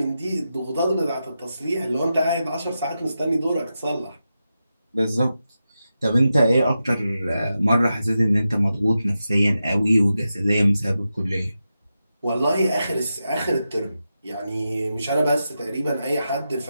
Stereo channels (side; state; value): both; inverted; correlation -0.90